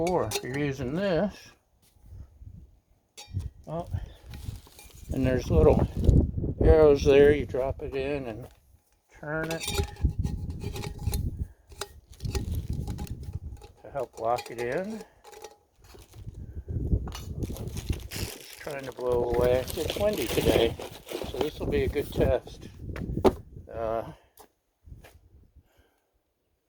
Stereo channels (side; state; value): both; identical; correlation 1.00